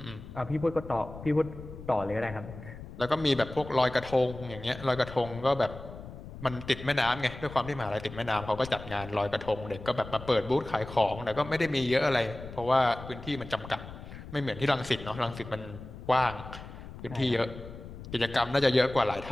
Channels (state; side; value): noise; left; rumble, 13 dB below the sound